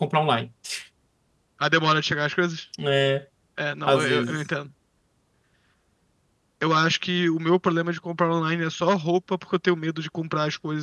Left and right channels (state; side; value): identical; both; correlation 1.00